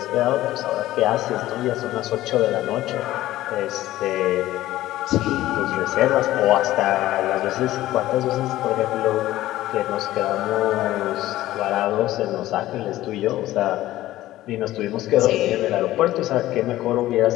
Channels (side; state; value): right; quieter; 15.3 dB